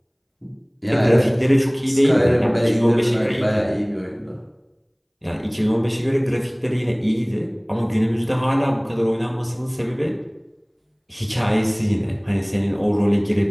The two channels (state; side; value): identical; both; correlation 1.00